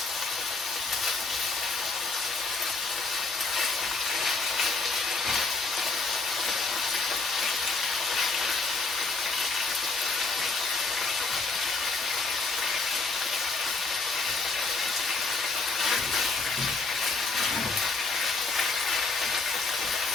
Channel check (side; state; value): right; quieter; 3.9 dB